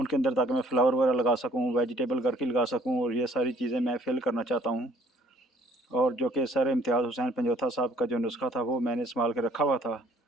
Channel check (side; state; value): both; normal; correlation 0.59